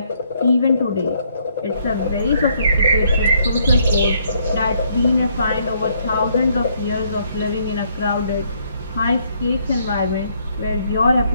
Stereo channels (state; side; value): inverted; both; correlation -0.70